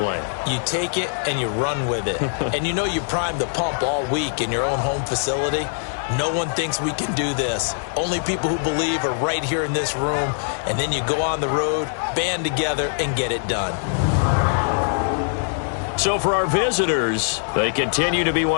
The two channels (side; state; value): right; silent; digital silence